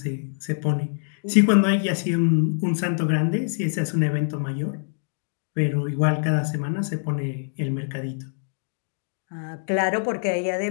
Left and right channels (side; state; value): right; silent; digital silence